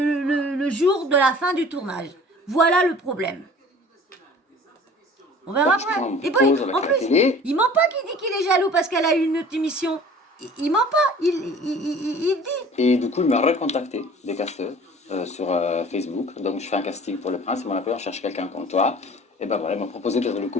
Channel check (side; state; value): both; normal; correlation 0.46